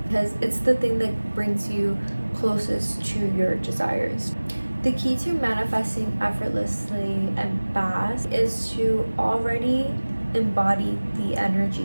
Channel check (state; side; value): inverted; both; correlation -1.00